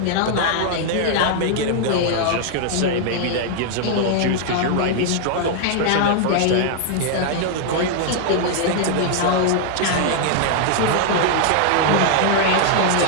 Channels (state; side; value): different; both; correlation 0.00